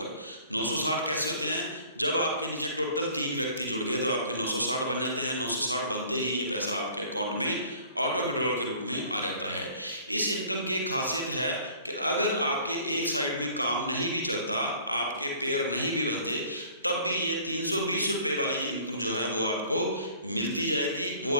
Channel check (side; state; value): both; inverted; correlation -0.51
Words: 960 कैसे होते हैं? जब आपके नीचे टोटल 3 व्यक्ति जुड़ गए तो आपके 960 बन जाते हैं। 960 बनते ही ये पैसा आपके अकाउंट में ऑटो विड्रॉल के रूप में आ जाता है। इस इनकम की एक खासियत है कि अगर आपके एक साइड में काम नहीं भी चलता, आपके पेयर नहीं भी बनते, तब भी ये 320 रुपये वाली इनकम जो है वो आपको मिलती जाएगी। वो